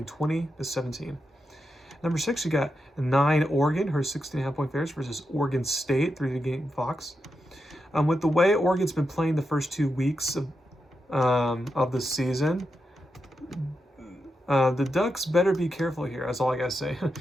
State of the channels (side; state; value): both; normal; correlation 0.87